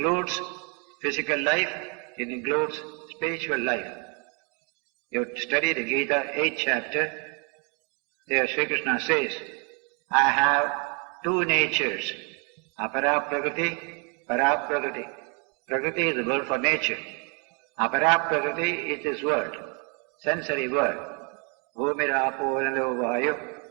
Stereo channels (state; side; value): quieter; left; 35.4 dB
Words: physical life, it includes spiritual life. You study the Gita, 8th chapter, there Sri Krishna says, I have two natures, apara prakriti, para prakriti. Prakriti is the word for nature. Apara prakriti is this world, sensory world. Bhumirapo nalo vayu,